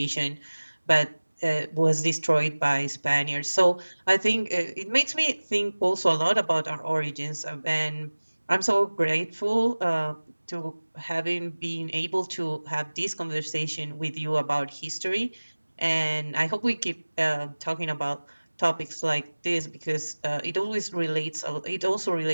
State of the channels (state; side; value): inverted; both; correlation -1.00